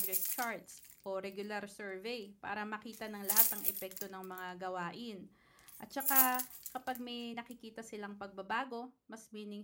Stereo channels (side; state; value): both; identical; correlation 1.00